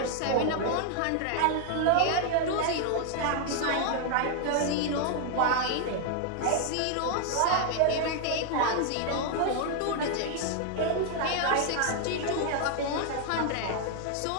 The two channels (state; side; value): different; both; correlation 0.00